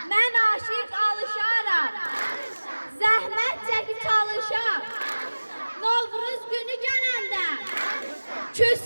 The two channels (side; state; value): both; inverted; correlation -1.00